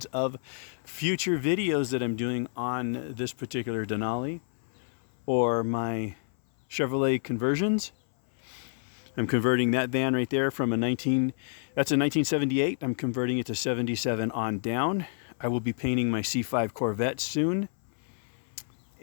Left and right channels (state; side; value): silent; right; 58 dB below the other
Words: of future videos that I'm doing on this particular Denali or my Chevrolet conversions. I'm converting that van right there from that's a 1978. I'm converting it to 77 on down. I will be painting my C5 Corvette soon,